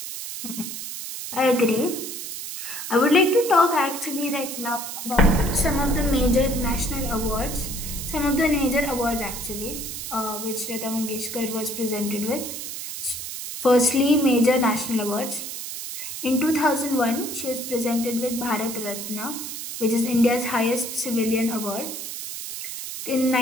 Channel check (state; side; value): noise; right; hiss, 7 dB below the sound